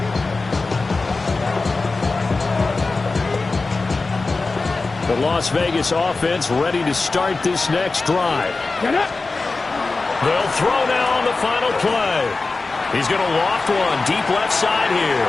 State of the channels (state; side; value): quieter; right; 3.7 dB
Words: The Las Vegas offense ready to start this next drive. They'll throw now on the final play. He's going to loft one deep left side here.